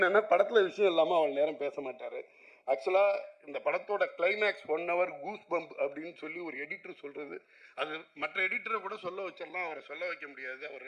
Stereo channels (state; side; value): identical; both; correlation 1.00